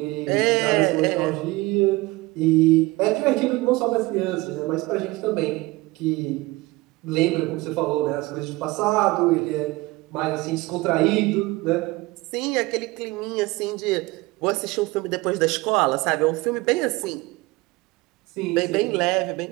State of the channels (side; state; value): left; quieter; 21.4 dB